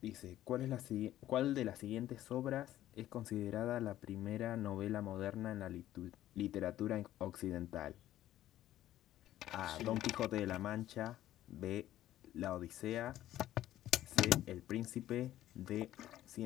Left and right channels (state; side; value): quieter; right; 13.4 dB